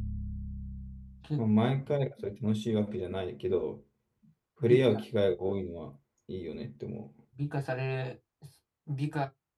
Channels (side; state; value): both; identical; correlation 1.00